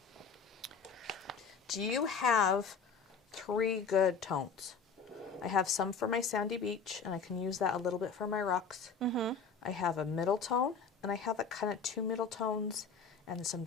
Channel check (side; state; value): right; quieter; 5.5 dB